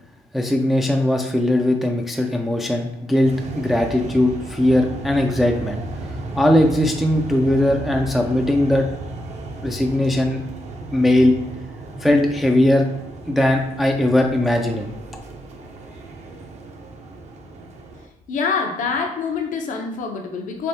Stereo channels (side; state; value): both; normal; correlation 0.85